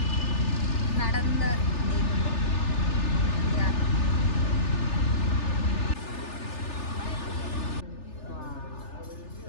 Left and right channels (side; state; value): right; late; 3.4 ms